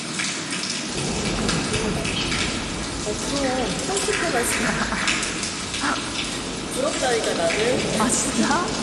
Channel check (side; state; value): both; identical; correlation 1.00